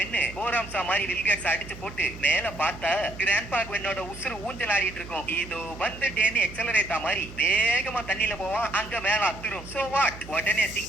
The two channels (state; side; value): noise; right; hum, 15 dB below the sound